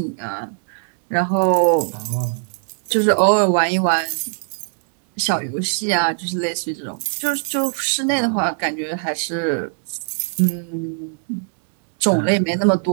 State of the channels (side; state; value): left; silent; digital silence